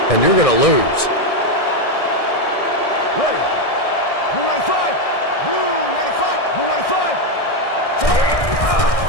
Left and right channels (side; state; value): right; late; 1.6 ms